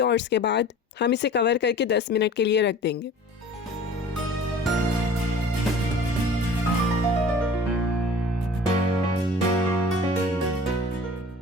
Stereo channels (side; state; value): both; normal; correlation 0.44